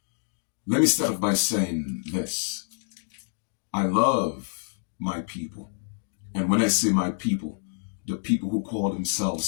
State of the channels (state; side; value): silent; right; digital silence